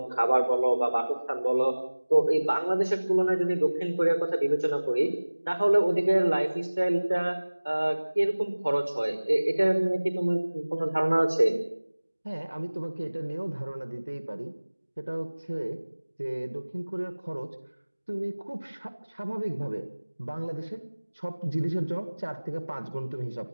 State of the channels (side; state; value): both; inverted; correlation -1.00